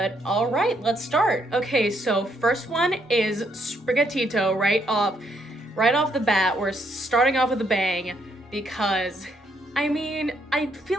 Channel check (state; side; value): normal; both; correlation 0.73